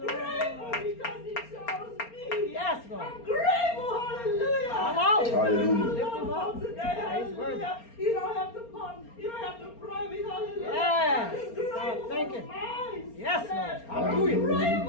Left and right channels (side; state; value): right; late; 4.3 ms